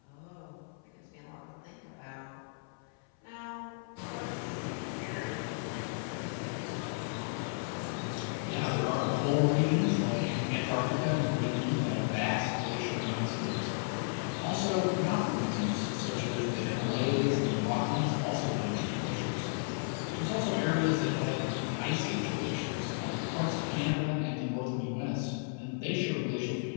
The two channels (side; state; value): right; silent; 55 dB below the other